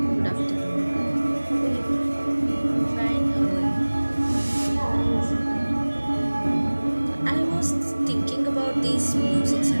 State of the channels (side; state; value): both; inverted; correlation -1.00